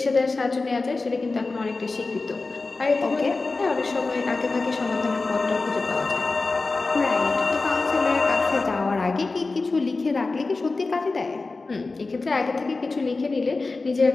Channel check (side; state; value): right; quieter; 3.7 dB